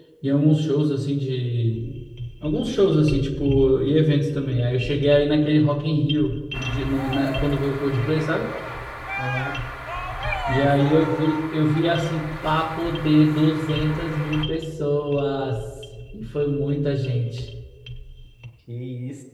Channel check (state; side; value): identical; both; correlation 1.00